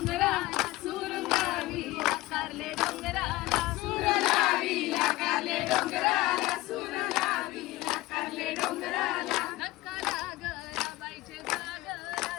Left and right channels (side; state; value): right; quieter; 18.6 dB